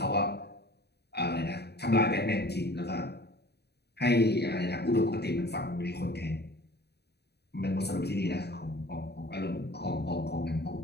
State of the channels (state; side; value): late; right; 0.48 ms